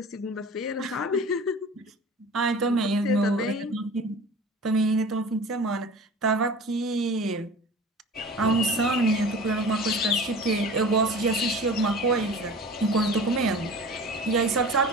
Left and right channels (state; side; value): normal; both; correlation 0.39